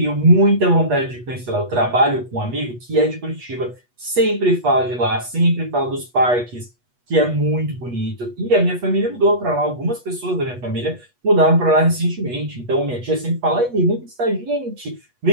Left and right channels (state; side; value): late; left; 8.2 ms